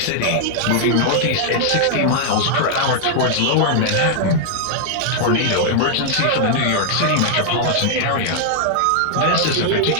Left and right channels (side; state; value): both; different; correlation -0.01